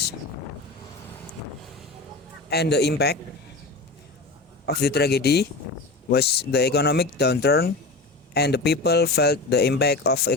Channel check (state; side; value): quieter; right; 3.3 dB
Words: And the impact of the tragedy was the economic downturn, and the people felt the impact of